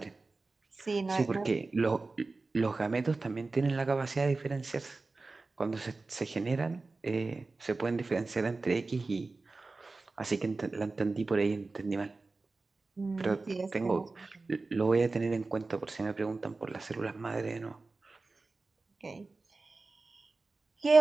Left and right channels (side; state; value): left; quieter; 3.6 dB